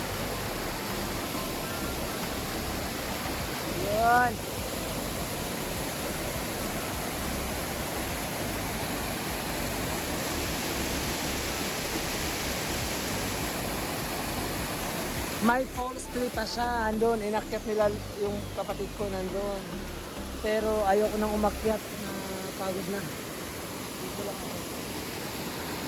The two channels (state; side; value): identical; both; correlation 1.00